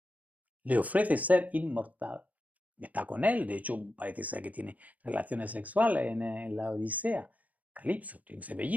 Le ofrece ser inmortal. Está con él, de hecho parece ser que tiene relaciones sexuales en la Odisea. Calipso tiene que ser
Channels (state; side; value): late; left; 0.073 ms